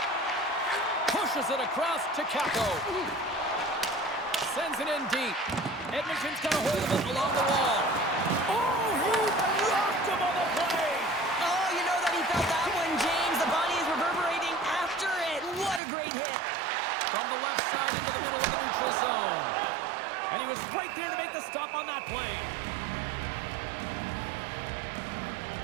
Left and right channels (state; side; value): drops out; left; at 15.8 s